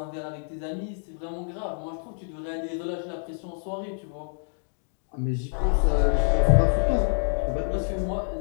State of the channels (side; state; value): right; silent; digital silence